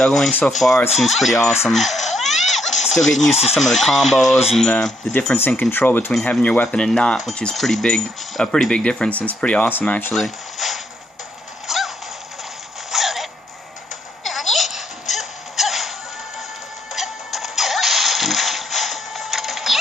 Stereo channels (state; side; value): normal; both; correlation 0.74